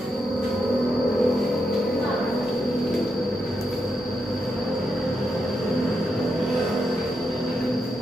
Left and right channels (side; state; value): both; normal; correlation 0.84